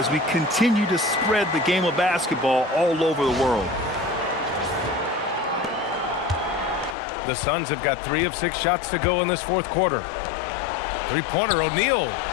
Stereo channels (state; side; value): drops out; right; at 7.0 s